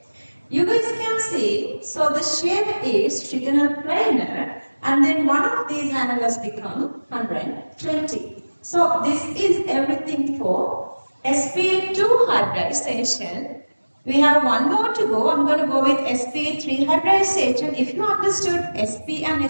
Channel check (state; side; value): inverted; both; correlation -1.00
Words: You guys can see, so the shape is trigonal planar, and then one of these angles become 120. So this is everything for sp2 hybridization. We have one more to go. I'm going to go with sp3 hybridization. If you understood sp and